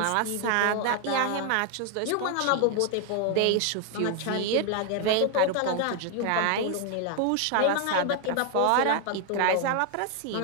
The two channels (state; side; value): different; both; correlation 0.00